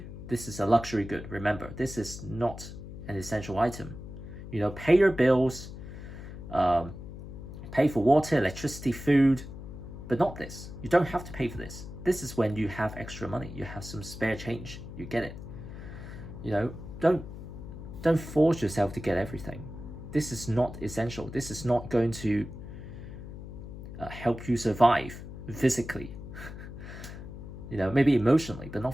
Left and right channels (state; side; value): noise; left; hum, 11 dB below the sound